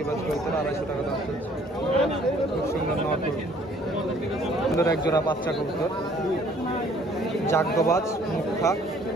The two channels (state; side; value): normal; both; correlation 0.58